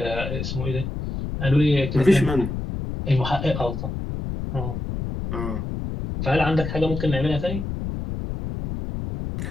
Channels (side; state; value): left; noise; rumble, 5 dB below the sound